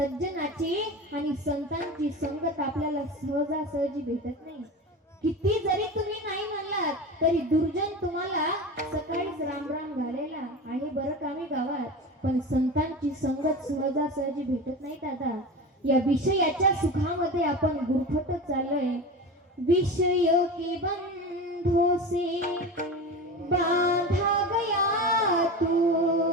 आणि संतांची संगत आपल्याला सहजासहजी भेटत नाही. किती जरी तुम्ही नाही म्हणलात तरी दुर्जन तुम्हाला सकाळीच रामराम घालायला आहे बरं कामी गावात, पण संतांची संगत सहजासहजी भेटत नाही दादा. या विषयाच्या सुखामध्ये आपण गुरफटत चाललोय. विषयों के बंधों से बांधा गया तू,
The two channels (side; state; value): both; normal; correlation 0.28